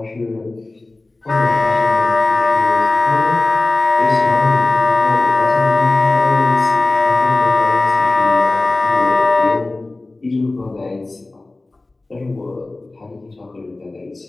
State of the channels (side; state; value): right; quieter; 3.1 dB